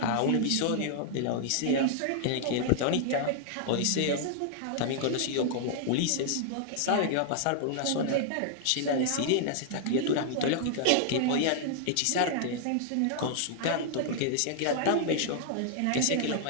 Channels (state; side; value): different; both; correlation 0.00